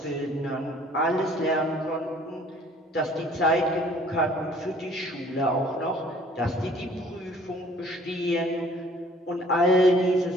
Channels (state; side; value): normal; both; correlation 0.55